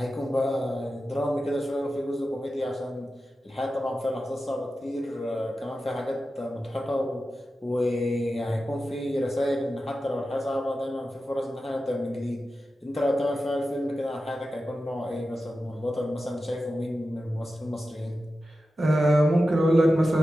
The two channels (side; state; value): both; normal; correlation 0.92